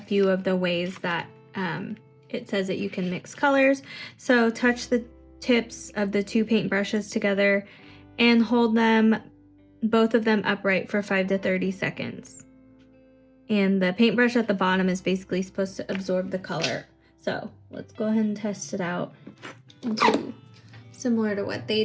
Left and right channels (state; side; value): identical; both; correlation 1.00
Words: of the ways that it says that you can mix colors. So touch the tips of the two paintbrushes together and hold them, both of them upright for 5 to 30 seconds. And the paintbrush at the bottom is basically supposed to absorb the color. So let's go ahead and test it out and do similar to what they